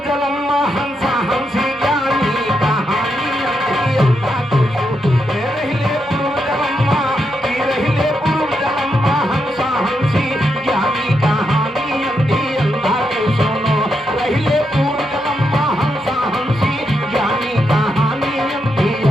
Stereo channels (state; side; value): normal; both; correlation 0.82